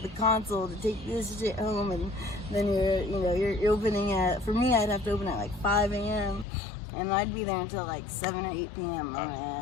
console to take this shit home, and then you're opening at. For me, I'd have to open at like 5 a.m. and I'd be there until like 7 or 8 p.m.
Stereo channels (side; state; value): right; drops out; at 6.5 s